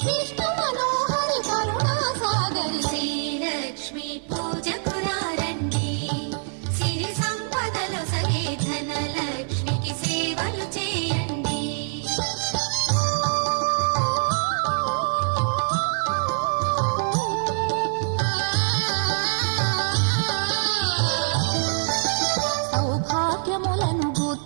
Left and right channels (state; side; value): silent; left; digital silence